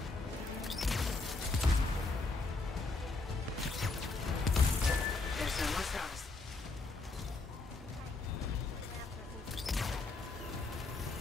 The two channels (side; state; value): right; quieter; 3.6 dB